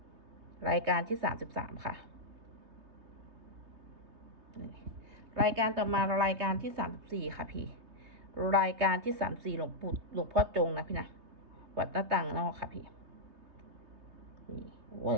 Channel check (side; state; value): left; late; 3.2 ms